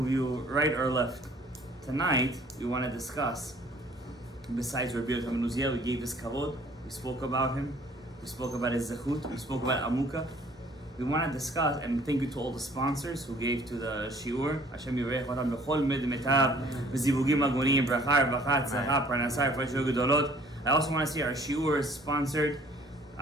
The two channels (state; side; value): normal; both; correlation 0.56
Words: you right or left. Tonight, we want to discuss, besides Rabbi Yochanan ben Uziel, we gave his kavod, we spoke about him, we spoke about his zechut, we spoke about Amuka. We want to discuss, and thank you to all the sponsors who gave to the shiur. Hashem yivarech otam bechol medmetav, v'zivugim agonim, bracha, rvacha, tzlacha, parnasa, refreshio gedolot. I also want to see our shiur is sponsored,